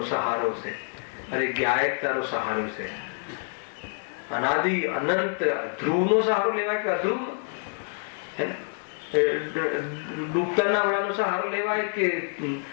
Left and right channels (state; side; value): silent; right; 60 dB below the other